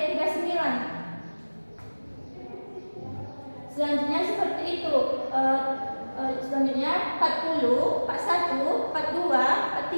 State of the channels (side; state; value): both; inverted; correlation -1.00